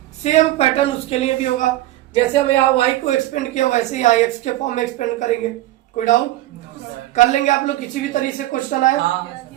सेम पैटर्न उसके लिए भी होगा, जैसे हम यहाँ y को एक्सपेंड किया वैसे ही यहाँ x के फॉर्म में एक्सपेंड करेंगे। कोई डाउट कर लेंगे आप लोग, किसी भी तरीके से क्वेश्चन आए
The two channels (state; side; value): quieter; left; 15.8 dB